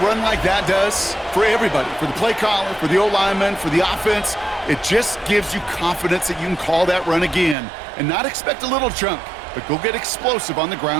like that does? For everybody, for the play caller, for the O-lineman, for the offense, it just gives you confidence that you can call that run again and not expect a little chunk, but go get explosive on the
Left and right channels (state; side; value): drops out; left; at 7.6 s